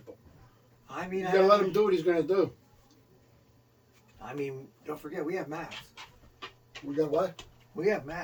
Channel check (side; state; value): both; identical; correlation 1.00